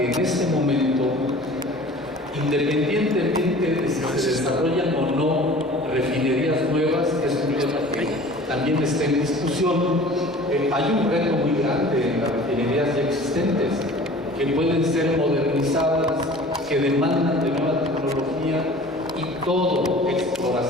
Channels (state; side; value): normal; both; correlation 0.44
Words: en este momento, independientemente de si se desarrollan o no refinerías nuevas, es un tema que también está en discusión. Hay un reto muy grande en las refinerías ya existentes, que pueden ser modernizadas, que demandan de nueva tecnología, y todo,